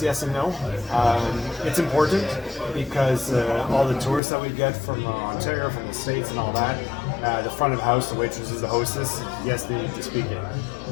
and no. It's important because all the tourists that we get from Ontario, from the States and all that, the front of house, the waitresses, the hostess, yes, they need to speak it.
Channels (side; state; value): right; drops out; at 4.2 s